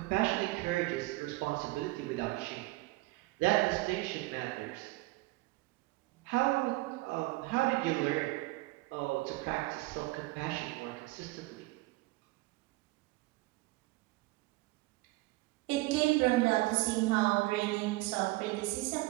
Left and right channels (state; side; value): quieter; left; 21.0 dB